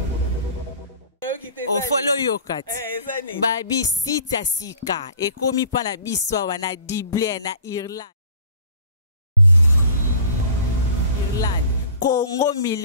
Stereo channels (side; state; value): both; inverted; correlation -0.45